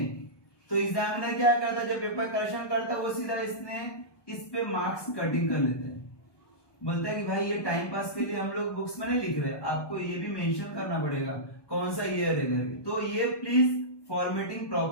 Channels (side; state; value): right; late; 1.2 ms